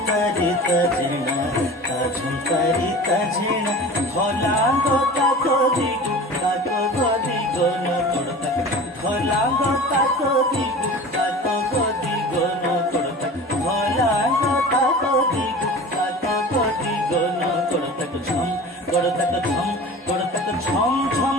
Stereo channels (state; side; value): normal; both; correlation 0.37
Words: ঝেনা ঝংকারিতা ঝেনা ভলাঙ্গ তাকো দিগু তাকো গদিগো নকড়তা ভলাঙ্গ তাকো দিগু তাকো গদিগো নকড়তা ভলাঙ্গ তাকো দিগু তাকো গদিগো নকড়তা ঝম গড়তা ঝম গড়তা ঝম ঝম